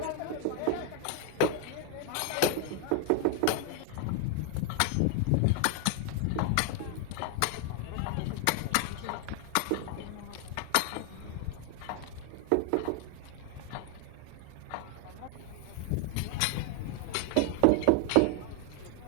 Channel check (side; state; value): both; different; correlation 0.00